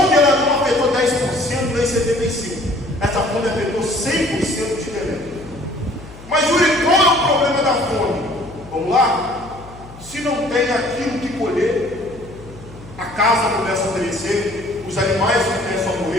ela não afetou 10%, nem 75%. Essa fome afetou 100% de Belém. Mas Yuri, qual é o problema da fome? Vamos lá? Se não tem aquilo que colher, a casa começa a perecer, os animais começam a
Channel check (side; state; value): left; noise; hum, 18 dB below the sound